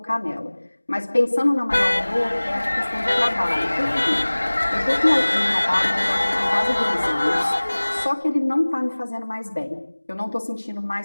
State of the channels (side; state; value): both; inverted; correlation -1.00